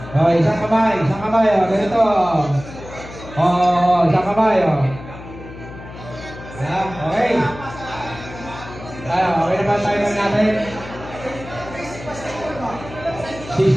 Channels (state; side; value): noise; left; hum, 14 dB below the sound